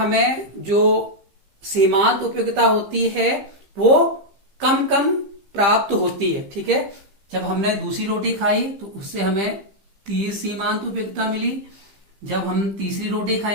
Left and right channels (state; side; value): late; left; 15 ms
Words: जो सीमांत उपयोगिता होती है वो कम कम प्राप्त होती है। ठीक है, जब हमने दूसरी रोटी खाई तो उससे हमें 30 सीमांत उपयोगिता मिली। जब हम तीसरी रोटी